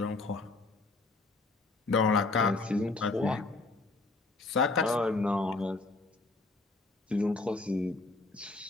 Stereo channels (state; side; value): quieter; right; 3.4 dB